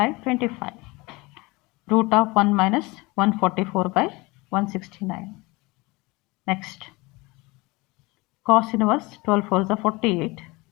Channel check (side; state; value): right; quieter; 23.9 dB